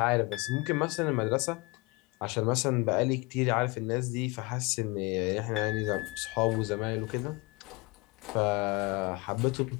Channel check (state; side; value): quieter; right; 25.1 dB